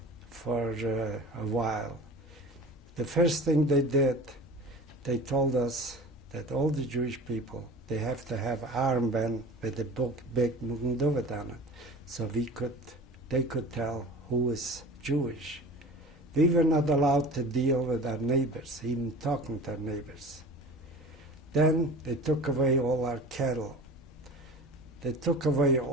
for a while. The first thing they did, they told us that all the Jewish people, they have to have armband with a big Magen David on it, so they could tell who is Jewish. We were not allowed to deal with our neighbors, even talking to our neighbors. Then they took away all our cattle. They took away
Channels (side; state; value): both; normal; correlation 0.38